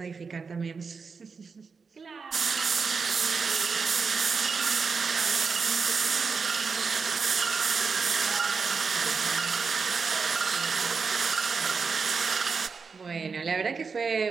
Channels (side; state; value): left; quieter; 5.2 dB